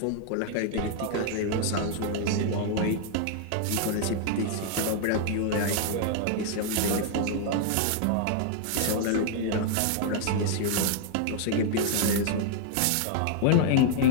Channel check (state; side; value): different; both; correlation -0.01